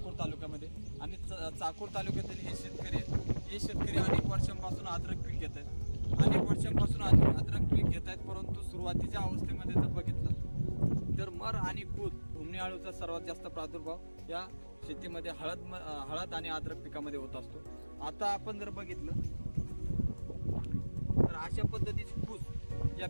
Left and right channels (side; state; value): both; inverted; correlation -1.00